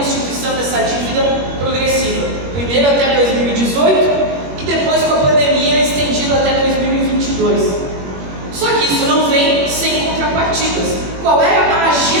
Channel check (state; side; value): late; left; 21 ms